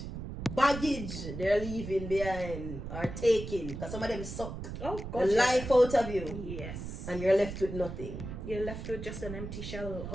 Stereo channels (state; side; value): noise; right; rumble, 8 dB below the sound